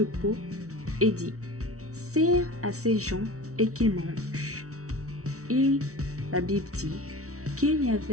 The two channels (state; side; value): late; left; 0.64 ms